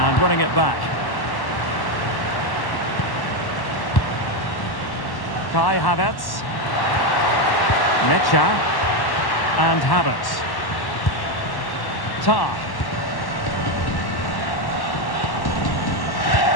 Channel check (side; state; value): right; late; 1.1 ms